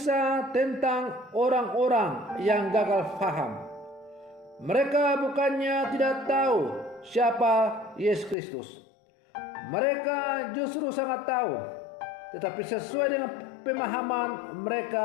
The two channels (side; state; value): right; drops out; at 8.3 s